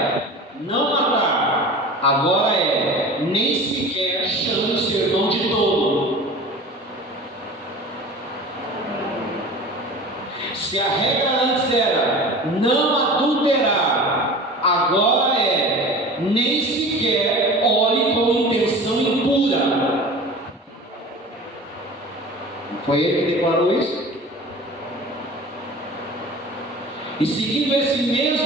não matar, agora é nem sequer chame o seu irmão de tolo. Se a regra antes era não adulterar, agora é nem sequer olhe com intenção impura. Não foi ele que declarou isso? E seguindo esse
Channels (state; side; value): normal; both; correlation 0.38